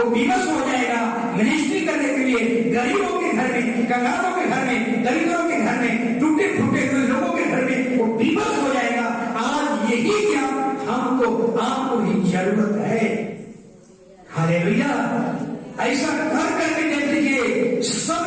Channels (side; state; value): both; identical; correlation 1.00